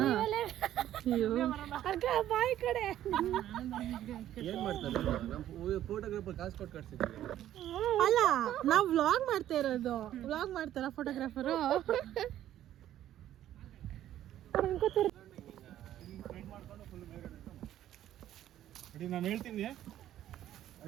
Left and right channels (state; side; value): quieter; left; 12.2 dB